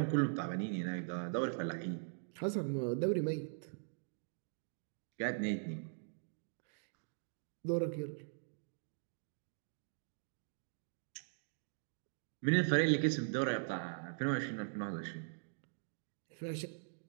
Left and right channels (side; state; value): left; silent; digital silence